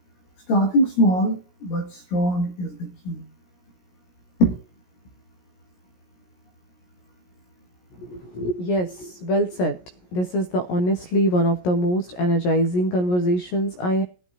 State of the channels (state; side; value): late; right; 17 ms